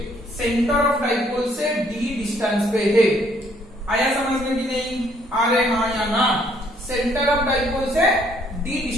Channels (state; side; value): normal; both; correlation 0.65